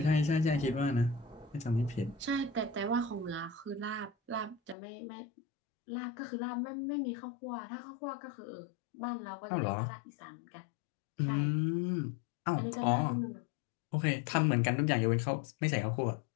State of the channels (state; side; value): drops out; right; at 4.8 s